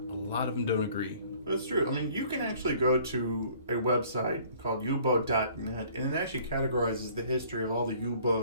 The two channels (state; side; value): inverted; both; correlation -0.56